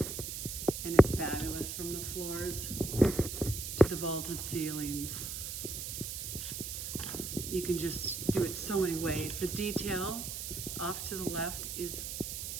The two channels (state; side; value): noise; right; hiss, 5 dB below the sound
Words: and it's fabulous from the floors to the vaulted ceilings. You can just do it so many ways. The detail off to the left is